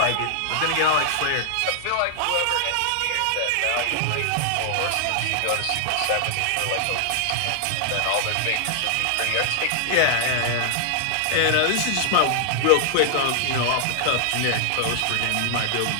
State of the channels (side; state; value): both; different; correlation -0.01